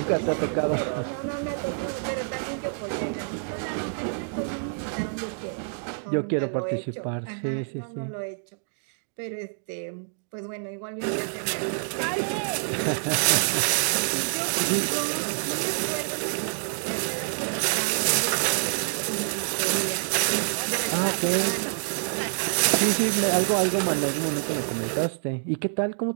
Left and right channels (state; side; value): silent; left; digital silence